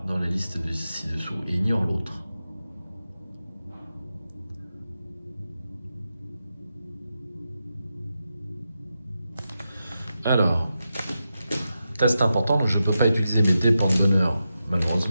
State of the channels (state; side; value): inverted; both; correlation -0.89